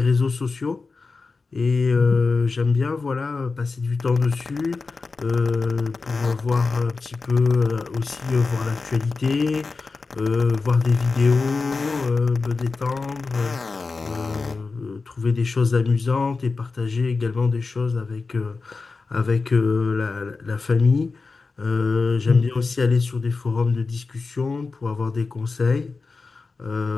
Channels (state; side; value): quieter; right; 4.2 dB